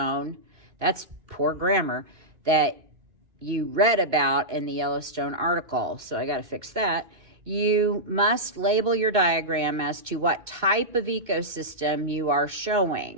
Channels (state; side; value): late; left; 2.6 ms